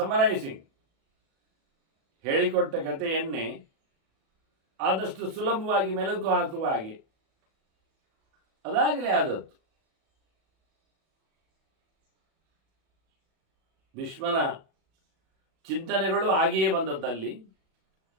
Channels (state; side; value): late; left; 37 ms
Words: ಸಮರೈಸಿಂಗ್, ಹೇಳಿಕೊಟ್ಟ ಕಥೆಯನ್ನೇ ಆದಷ್ಟು ಸುಲಭವಾಗಿ ಮೆಲುಕು ಹಾಕುವ ಹಾಗೆ ಅದಾಗಲೇ ಆದದ್ದು. ಭೀಷ್ಮನ ಚಿಂತನೆಗಳು ಹಾಗೆಯೇ ಬಂದದ್ದಲ್ಲಿ